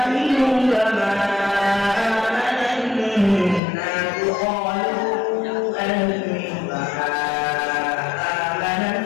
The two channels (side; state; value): right; drops out; at 3.6 s